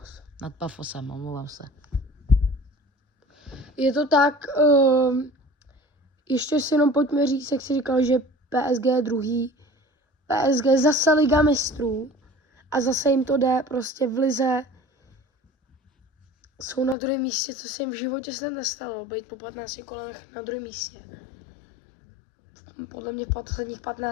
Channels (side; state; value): right; drops out; at 16.9 s